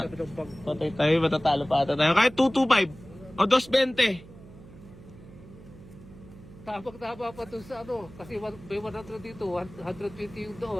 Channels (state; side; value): noise; right; hum, 19 dB below the sound